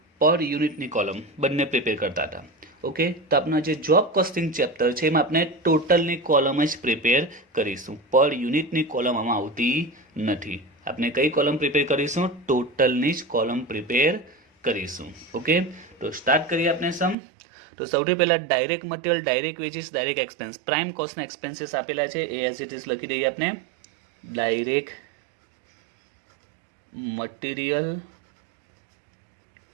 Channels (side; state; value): left; drops out; at 17.2 s